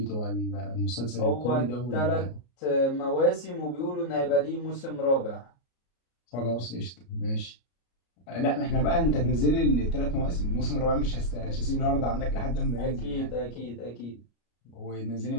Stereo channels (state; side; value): late; right; 33 ms